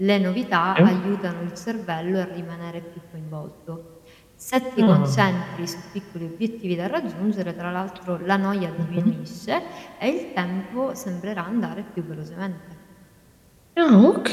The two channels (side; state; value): both; identical; correlation 1.00